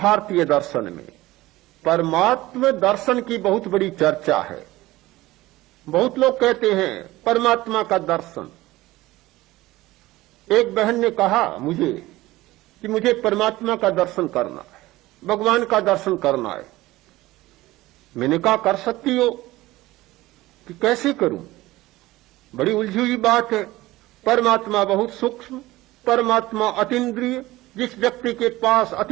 दर्शन में परमात्म दर्शन की बहुत बड़ी चर्चा है। बहुत लोग कहते हैं परमात्मा का दर्शन। एक बहन ने कहा मुझे कि मुझे परमात्मा का दर्शन करना है, भगवान का दर्शन करना है। मैंने कहा कर सकती हो, कि कैसे करूं? बड़ी उलझी हुई बात है। परमात्मा बहुत सूक्ष्म, परमात्मा अतीन्द्रिय। जिस व्यक्ति के पास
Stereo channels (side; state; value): left; quieter; 18.1 dB